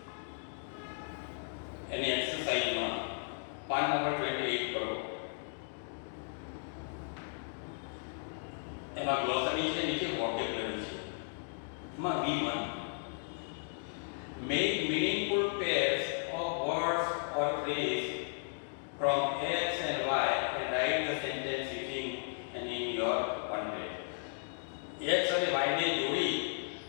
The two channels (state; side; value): silent; right; digital silence